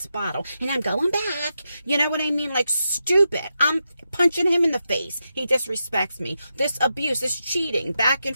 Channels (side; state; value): both; inverted; correlation -0.86